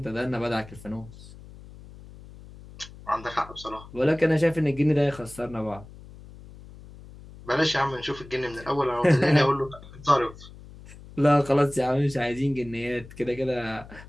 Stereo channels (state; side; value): noise; left; hum, 18 dB below the sound